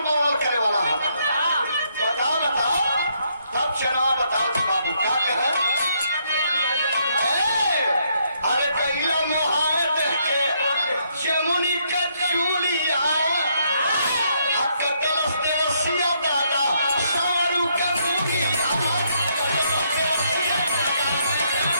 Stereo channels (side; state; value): both; inverted; correlation -0.73